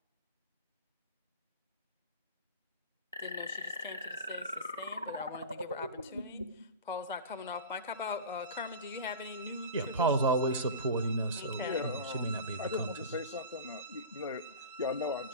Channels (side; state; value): both; inverted; correlation -0.31